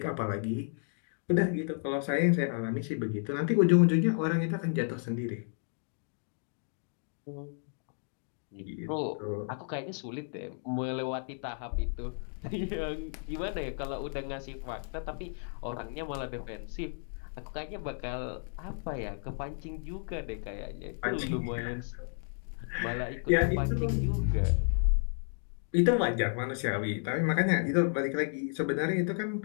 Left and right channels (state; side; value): silent; right; 56 dB below the other